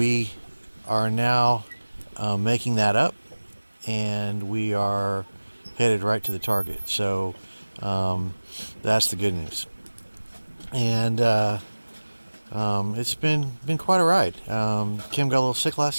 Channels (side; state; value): both; inverted; correlation -1.00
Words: are now making that up, and we are headed right to the target. So that's the good news. And it's been quite a ride. Kim got a little sick